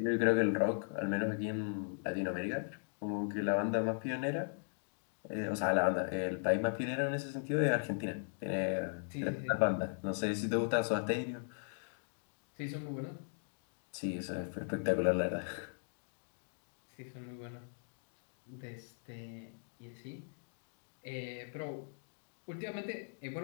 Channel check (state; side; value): silent; right; digital silence